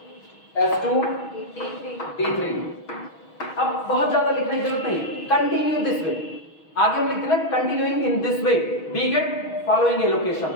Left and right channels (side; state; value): right; late; 6.3 ms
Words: S2D3। अब बहुत ज्यादा लिखने की जरूरत नहीं, कंटिन्यू दिस वे, आगे हम लिखते हैं continuing in this way we get following allocation,